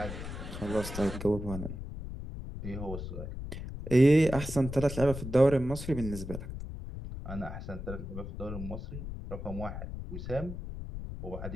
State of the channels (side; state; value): left; noise; rumble, 8 dB below the sound